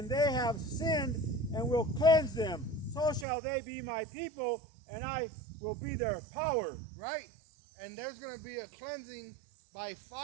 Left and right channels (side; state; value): left; drops out; at 3.2 s